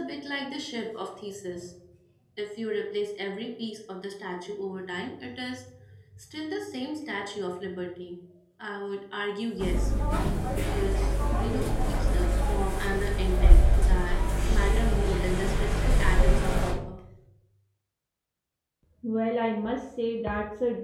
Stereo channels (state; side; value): identical; both; correlation 1.00